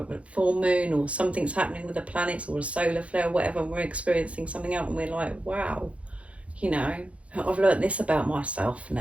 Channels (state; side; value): late; left; 0.063 ms